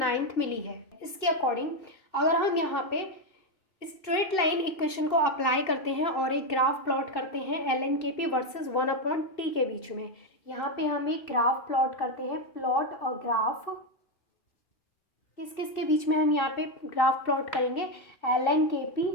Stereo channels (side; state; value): right; late; 2.6 ms